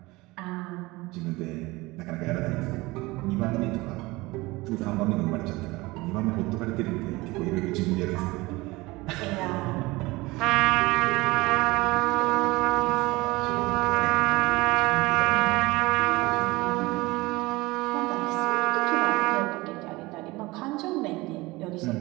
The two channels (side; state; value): left; quieter; 21.6 dB